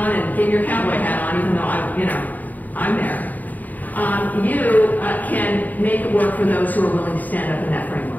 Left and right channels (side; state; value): right; late; 0.082 ms